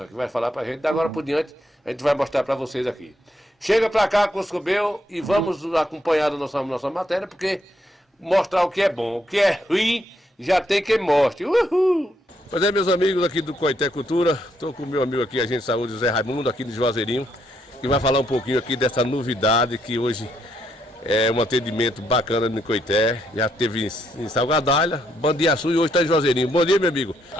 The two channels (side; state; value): both; normal; correlation 0.75